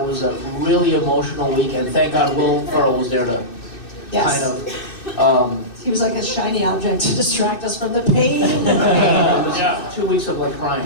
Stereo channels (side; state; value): right; late; 2.6 ms